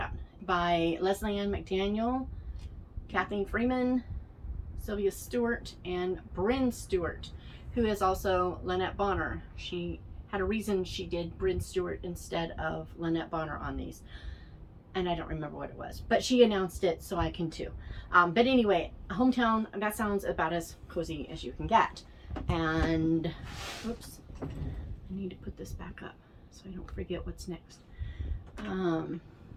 By Leslie Ann McDaniel, Kathleen Freeman, Sylvia Stewart, and Bryn Stewart, who is also Lynette Bonner. She had a reason she did Bryn Stewart instead of Lynette Bonner on these. And I don't remember what it was, but she announced it, so I can too. But anyway, Hometown, that sounds about as cozy as you can get. And, oops, I need to put this back up so I don't forget what's next.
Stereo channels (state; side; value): identical; both; correlation 1.00